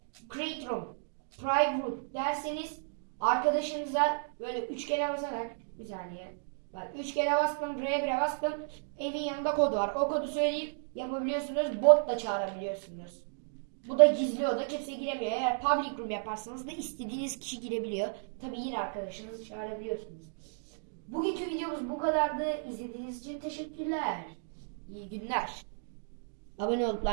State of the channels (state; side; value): silent; left; digital silence